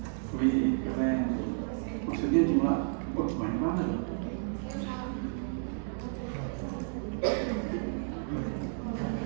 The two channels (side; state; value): left; silent; 57 dB below the other